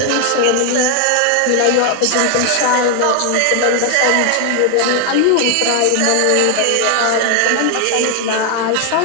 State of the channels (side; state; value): both; different; correlation 0.00